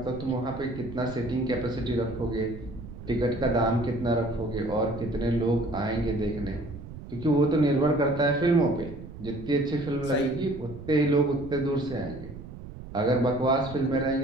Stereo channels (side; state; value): right; noise; rumble, 13 dB below the sound